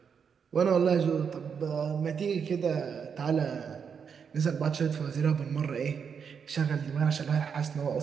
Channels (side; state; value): left; quieter; 6.7 dB